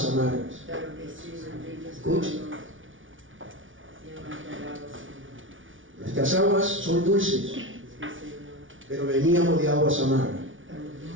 amargas. Claro que sí, bendito Escuche. Salvador. Nuestras aguas son dulces, Sí, Señor. pero veníamos de aguas amargas,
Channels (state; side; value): late; left; 0.57 ms